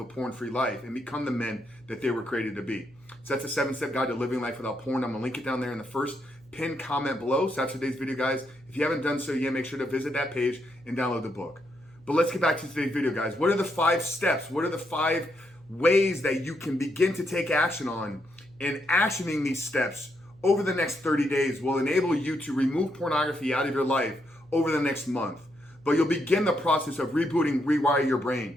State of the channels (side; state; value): right; noise; hum, 29 dB below the sound